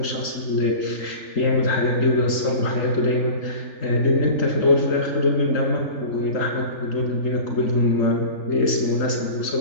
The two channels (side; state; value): right; late; 3.4 ms